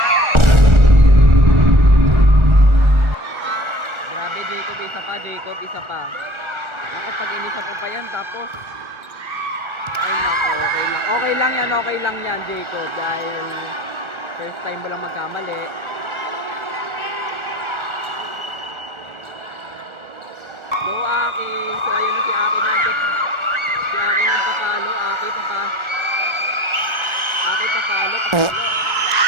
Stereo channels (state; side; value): late; left; 1.4 ms